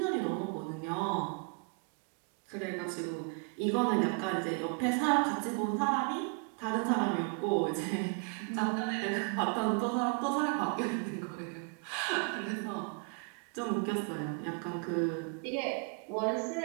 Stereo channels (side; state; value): left; quieter; 36.0 dB